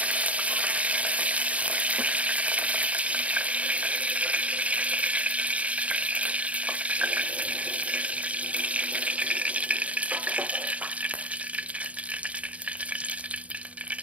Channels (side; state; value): left; late; 0.066 ms